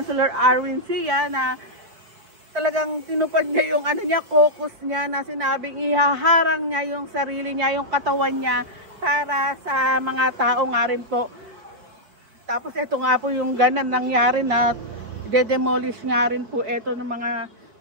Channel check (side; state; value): left; late; 5.1 ms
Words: Arwin Sia na talagang tinupad niya yung caucus niya na sinabing ihaharang niya yung sarili niya, yung katawan niya para sa mga tao nga rin po. Tapos ito nga po yung ganan nangyari na de-demolish nga rin po ito ng mga